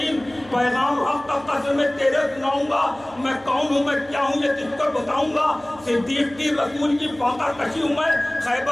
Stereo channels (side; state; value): right; noise; hum, 24 dB below the sound